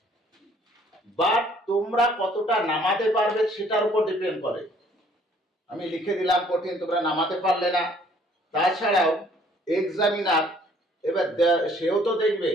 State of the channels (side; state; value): both; normal; correlation 0.60